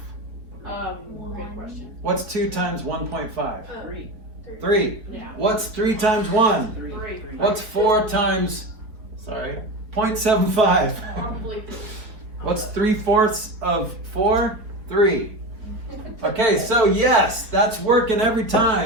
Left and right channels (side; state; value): left; late; 4.3 ms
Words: Good question. What's 2 times 1.5? 3. 3. Yeah. What's 3 times 1? 3. 3. What's 4 times, 0.75? Probably 3. What's 3/4 of 4? 3. Okay, so yes, that's working every